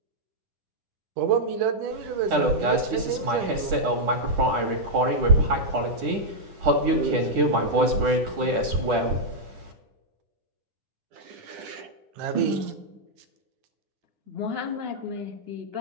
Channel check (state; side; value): late; left; 10 ms